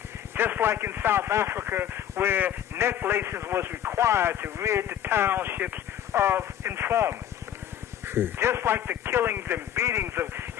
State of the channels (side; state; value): right; quieter; 10.7 dB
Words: Just like in South Africa, where necklaces was required to rid the townships of informants. Just like the killings and beatings of